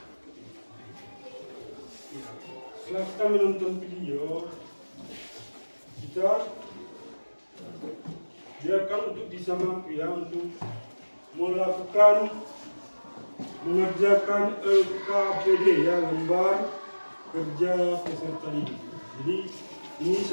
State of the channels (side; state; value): both; inverted; correlation -1.00